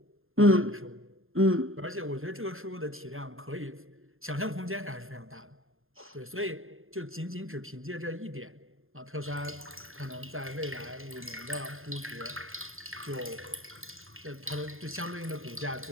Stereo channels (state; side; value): late; left; 0.60 ms